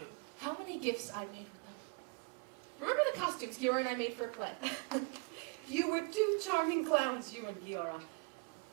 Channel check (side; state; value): left; quieter; 32.6 dB